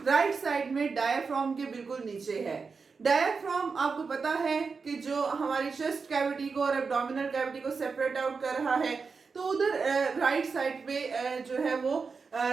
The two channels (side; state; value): left; quieter; 4.9 dB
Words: राइट साइड में डायाफ्राम के बिल्कुल नीचे है। डायाफ्राम आपको पता है कि जो हमारी चेस्ट कैविटी को और एब्डोमिनल कैविटी को सेपरेट आउट कर रहा है, तो उधर राइट साइड पे जो है वो